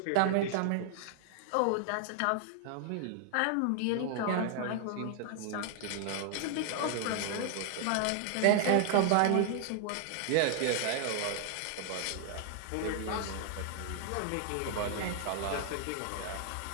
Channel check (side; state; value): both; different; correlation 0.00